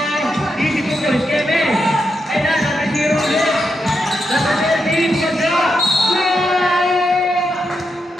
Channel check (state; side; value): normal; both; correlation 0.84